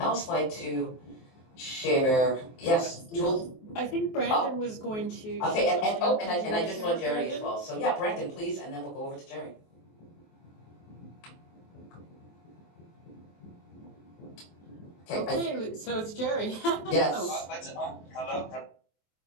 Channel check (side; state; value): right; late; 23 ms